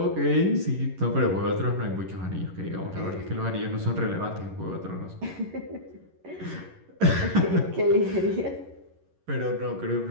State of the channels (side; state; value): left; late; 11 ms